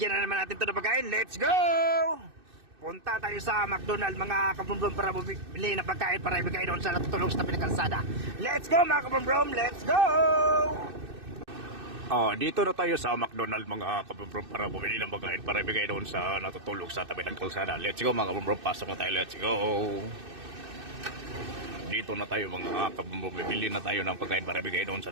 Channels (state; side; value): late; left; 2.6 ms